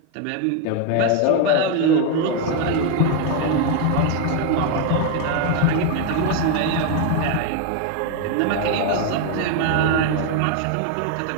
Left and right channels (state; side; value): different; both; correlation 0.01